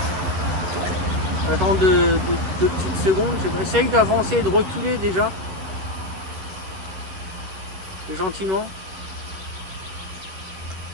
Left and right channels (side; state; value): left; late; 11 ms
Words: ça. Attends deux petites secondes. Essaye d'avancer et de reculer déjà. Gentiment.